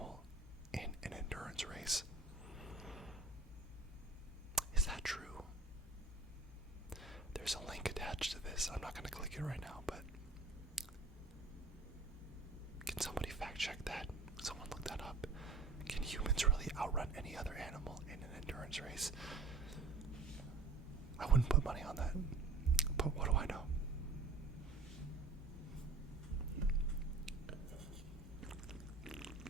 in an endurance race. Is that true? There's a link attached to this. I'm not going to click it right now, but can somebody fact check that? Someone look that up. Can humans really outrun any other animal in an endurance race? I wouldn't put money on that, but what do I know?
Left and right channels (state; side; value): quieter; left; 3.6 dB